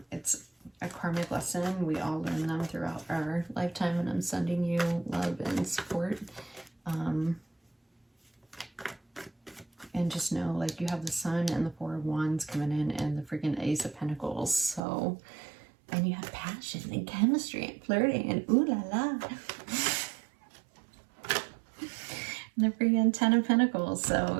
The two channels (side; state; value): left; drops out; at 14.8 s